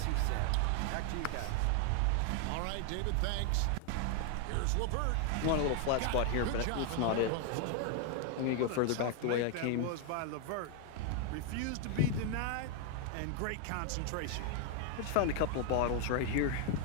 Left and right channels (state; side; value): different; both; correlation 0.00